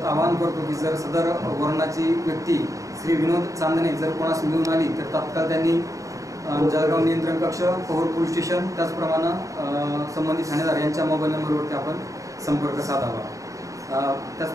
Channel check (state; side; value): late; left; 0.16 ms